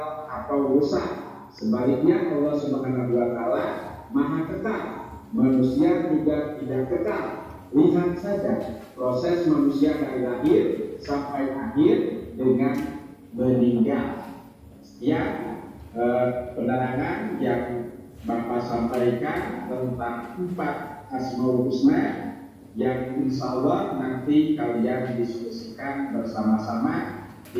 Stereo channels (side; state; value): both; identical; correlation 1.00